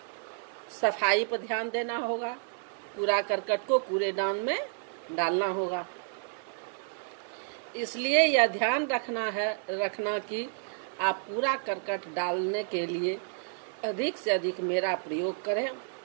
सफाई पर ध्यान देना होगा, कूड़ा करकट को कूड़ेदान में डालना होगा। इसलिए यह ध्यान रखना कि आप कूड़ा करकट डालने के लिए अधिक से अधिक मेरा प्रयोग करें,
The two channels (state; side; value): silent; left; digital silence